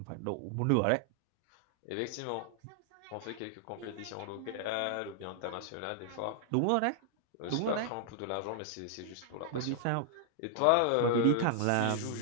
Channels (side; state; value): both; different; correlation 0.00